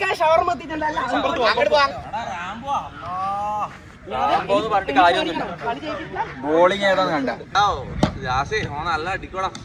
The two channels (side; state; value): both; identical; correlation 1.00